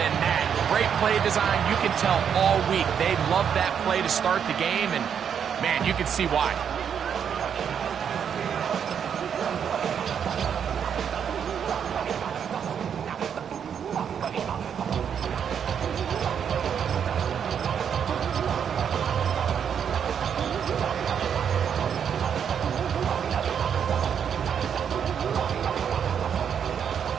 that. Great play design. You can tell all week they love that play to start the game, and, man, you can see why.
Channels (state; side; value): quieter; left; 7.9 dB